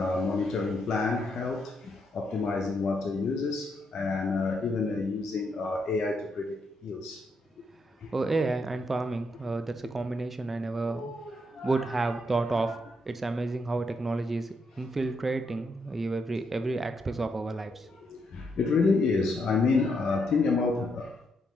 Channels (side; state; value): both; normal; correlation 0.78